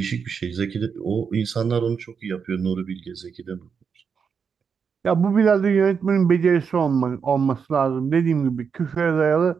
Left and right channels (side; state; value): left; quieter; 6.3 dB